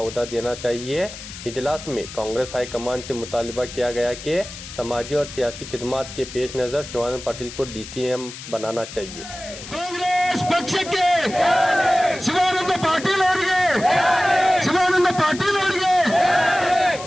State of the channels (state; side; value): noise; left; hiss, 13 dB below the sound